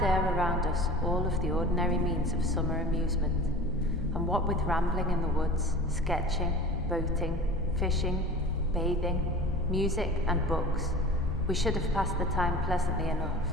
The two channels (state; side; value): normal; both; correlation 0.38